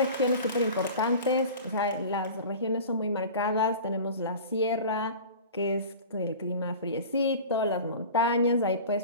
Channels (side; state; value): both; inverted; correlation -0.37